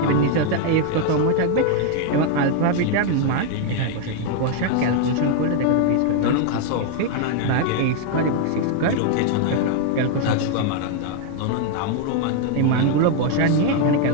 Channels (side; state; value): both; different; correlation 0.00